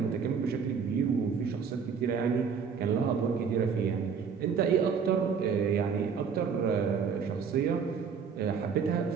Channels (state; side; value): quieter; left; 6.3 dB